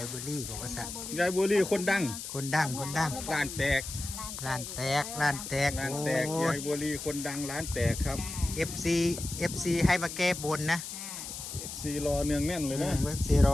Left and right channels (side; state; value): left; noise; hiss, 8 dB below the sound